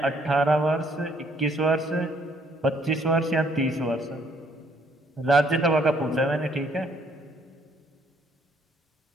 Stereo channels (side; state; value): both; normal; correlation 0.66